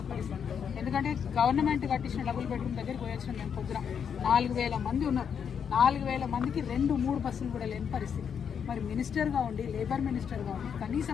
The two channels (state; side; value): quieter; right; 7.4 dB